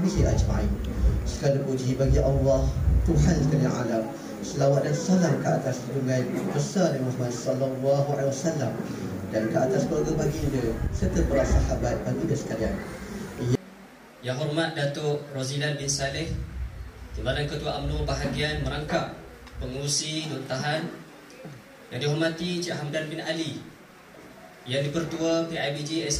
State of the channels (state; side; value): identical; both; correlation 1.00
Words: ajma'in. Segala puji bagi Allah, Tuhan sekalian alam. Selawat dan salam ke atas junjungan besar Muhammad sallallahu alaihi wasallam dan ke atas keluarga baginda serta para sahabat baginda sekalian. Yang hormat Datuk Rozilai bin Saleh, Timbalan Ketua UMNO bahagian merangkap pengurusi Dun Tahan, yang dihormati Cik Hamdan bin Ali, Yang di-Pertua PIBG